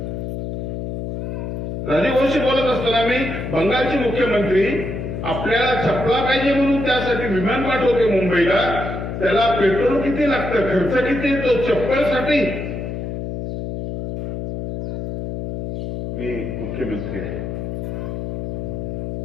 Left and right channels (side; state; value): left; noise; hum, 5 dB below the sound